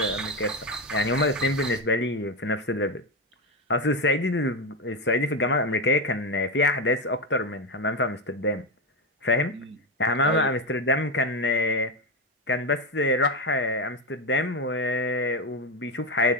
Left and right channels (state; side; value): normal; both; correlation 0.12